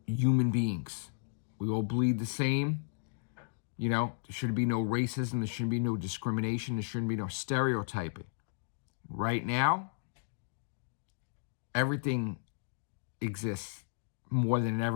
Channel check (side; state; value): right; silent; digital silence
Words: human beings. We all bleed the same. You know, there shouldn't be no racism. There shouldn't be no discrimination. There shouldn't be no stereotyping. Right now, everything exists more than it